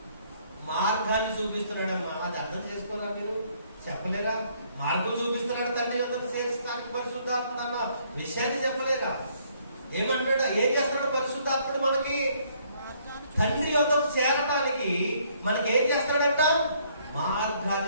మార్గాన్ని చూపిస్తున్నాడమ్మా. అది అర్థం చేసుకున్నా మీరు? చెప్పలేరా? మార్గం చూపిస్తున్నాడు. తండ్రి యొద్దకు చేరుస్తానికి పరిశుద్ధాత్మ అన్న విషయాన్ని చెప్పలేరా? ఏమంటాడు? ఏం చేస్తున్నాడు పరిశుద్ధాత్ముడు మనకి? తండ్రి యొద్దకు చేరడానికి మనకి ఏం చేస్తాడంట?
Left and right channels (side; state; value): both; inverted; correlation -0.66